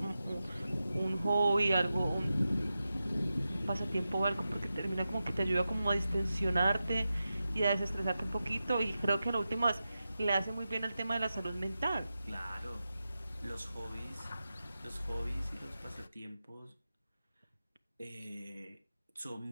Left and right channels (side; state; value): both; inverted; correlation -0.92